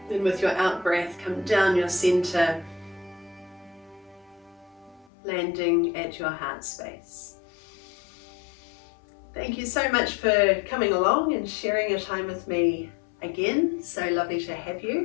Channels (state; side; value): drops out; right; at 5.1 s